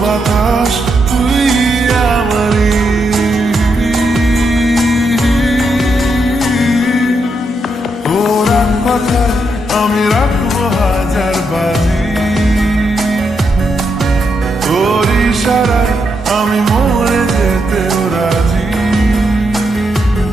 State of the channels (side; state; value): both; normal; correlation 0.81